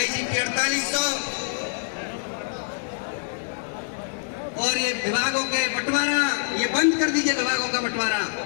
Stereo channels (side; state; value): right; silent; 62 dB below the other